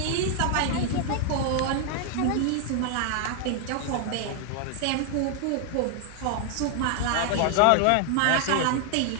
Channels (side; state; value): both; different; correlation 0.00